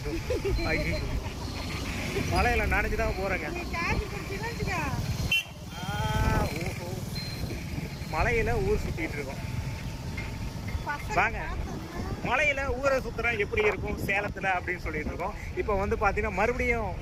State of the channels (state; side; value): identical; both; correlation 1.00